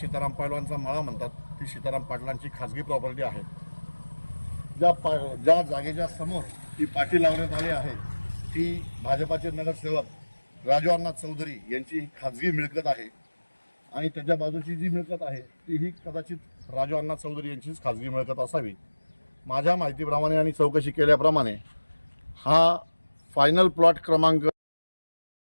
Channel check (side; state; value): both; inverted; correlation -1.00